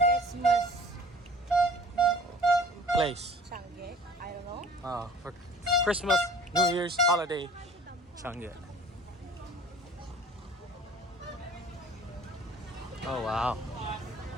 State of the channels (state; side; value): normal; both; correlation 0.47